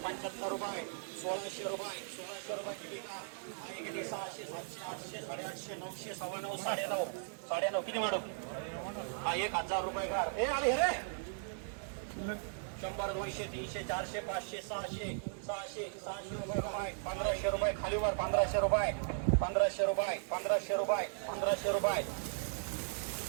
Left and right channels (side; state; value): left; silent; digital silence